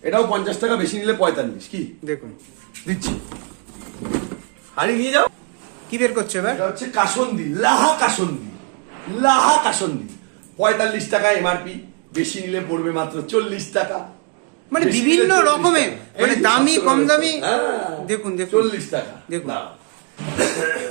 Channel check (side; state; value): left; quieter; 34.1 dB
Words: এটাও 50 টাকা, বেশি নিলে 45। কি দেখুন দিচ্ছি, হানি নিয়ে যাও। কি বের করছে এবার? এটা হচ্ছে কাসন্দি, লাহা কাসন্দি, লাহা কাসন্দি। 45 টাকা এমআরপি, বেশি নিলে পড়বে মাত্র 40 টাকা। মানে বেশি বিভিন্ন নিলে 40 রকমের, টাকা। মানে এই দামি কম দামি। হ্যাঁ, দেখুন দেখুন 40 টাকা। দেখুন। দাঁড়াও।